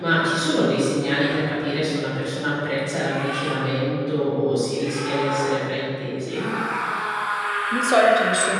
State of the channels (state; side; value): identical; both; correlation 1.00